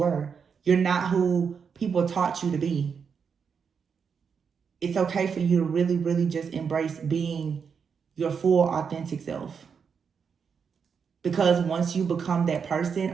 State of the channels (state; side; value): quieter; left; 6.4 dB